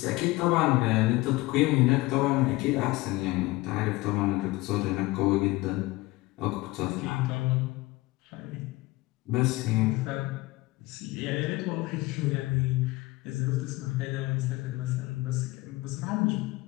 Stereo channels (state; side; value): quieter; right; 20.5 dB